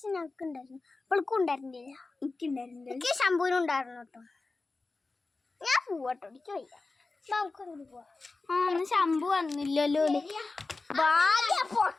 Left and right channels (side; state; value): right; quieter; 3.6 dB